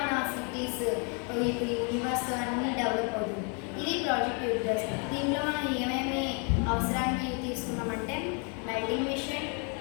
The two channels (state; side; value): quieter; right; 37.0 dB